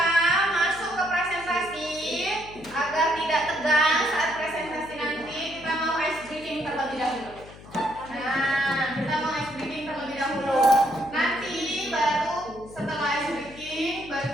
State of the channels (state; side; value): noise; left; hum, 19 dB below the sound